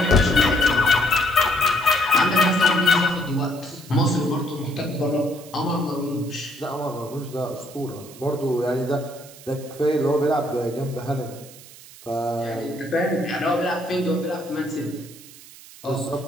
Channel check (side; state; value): right; noise; hiss, 19 dB below the sound